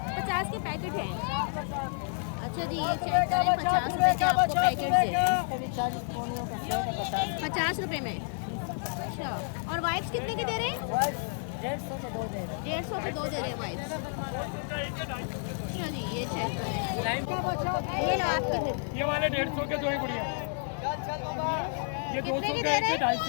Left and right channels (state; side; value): silent; right; 58 dB below the other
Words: 50 के पैकेट हैं। अच्छा जी ये चेक करें, 50 रुपये के आपको पैकेट दे रहे हैं, 50 रुपये में। अच्छा, और वाइप्स कितने के दे रहे हैं? 150 के 2 दे रहे हैं वाइप्स। अच्छा जी ये चेक करें, ये चेक करें, ये वाले 150 के 2 ही बढ़िया, ये 200 के